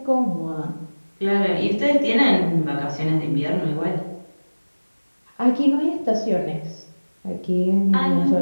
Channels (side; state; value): both; inverted; correlation -1.00